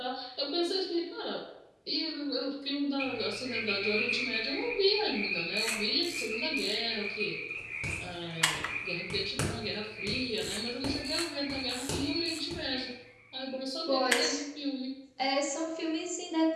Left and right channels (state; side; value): identical; both; correlation 1.00